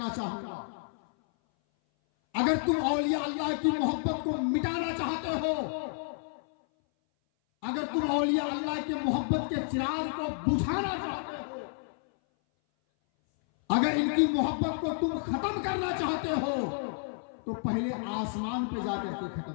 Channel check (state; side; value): silent; right; 57 dB below the other